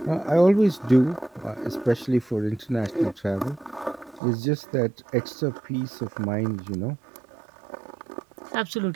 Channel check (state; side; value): drops out; left; at 4.2 s